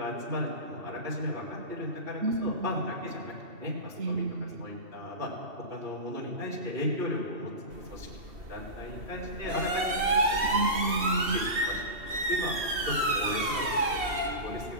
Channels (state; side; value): late; left; 2.7 ms